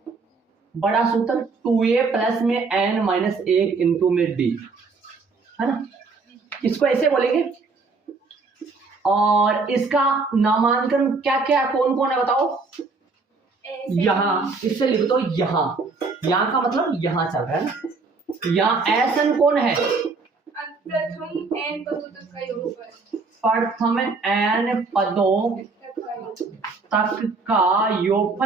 बड़ा सूत्र 2a प्लस में n माइनस 1 इंटू में d, है ना। इसको ऐसे बोलेंगे, और इसका नामांकन क्या क्या कौन कौन है बताओ। यहाँ इससे लिख दो, यहाँ का मतलब यहाँ चल रहा है ना। यहाँ एस एन कौन है, प्रथम एन पदों तक का योगफल, प्रथम एन पदों तक का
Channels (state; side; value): quieter; left; 4.1 dB